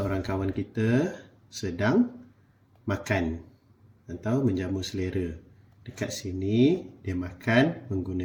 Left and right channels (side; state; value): both; identical; correlation 1.00